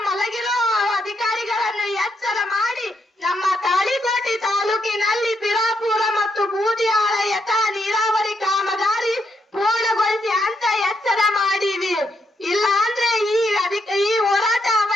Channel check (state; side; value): normal; both; correlation 0.78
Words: ಮಲಗಿರೋ ಅಧಿಕಾರಿಗಳನ್ನು ಎಚ್ಚರ ಮಾಡಿ ನಮ್ಮ ತಾಳಿಕೋಟೆ ತಾಲೂಕಿನಲ್ಲಿ ಬಿರಾಪುರ ಮತ್ತು ಬೂದಿಯಾಳ ಯಥಾ ನೀರಾವರಿ ಕಾಮಗಾರಿ ಪೂರ್ಣಗೊಳಿಸಿ ಅಂತ ಎಚ್ಚರ ಮಾಡಿವಿ. ಇಲ್ಲ ಅಂದ್ರೆ ಈ ಹೋರಾಟ